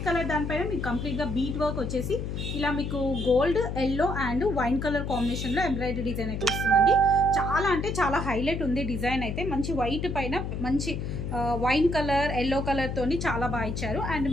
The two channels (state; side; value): noise; left; hum, 4 dB below the sound